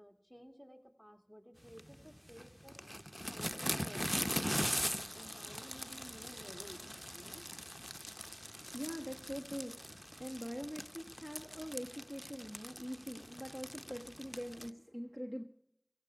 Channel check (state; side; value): identical; both; correlation 1.00